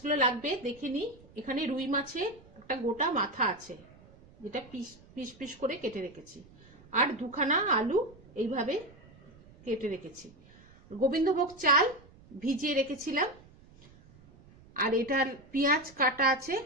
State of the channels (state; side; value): noise; right; rumble, 25 dB below the sound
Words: লাগবে দেখে নিই। এখানে রুই মাছের একটা গোটা মাথা আছে, যেটা পিস পিস করে কেটে রেখেছি, আর দুখানা আলু এইভাবে কেটে রেখেছি। গোবিন্দভোগ চাল ভিজিয়ে রেখেছিলাম, আর এটার পেঁয়াজ কাটা আছে,